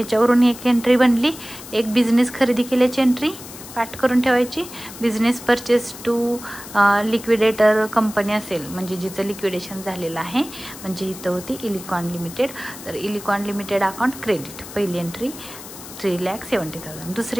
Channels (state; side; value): noise; left; hiss, 14 dB below the sound